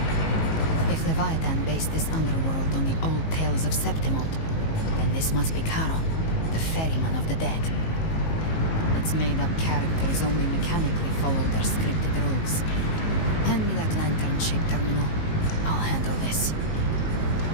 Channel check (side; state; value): right; late; 19 ms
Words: If Leviathan based this underworld on the old tales of Septimont, then this must be Charon, the ferryman of the dead. Its made-up characters only mechanically follow their scripted rules. Hand me that lantern-shaped terminal. I'll handle this.